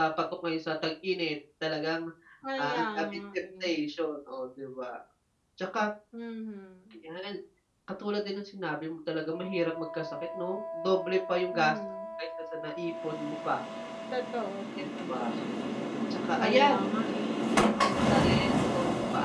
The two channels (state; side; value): identical; both; correlation 1.00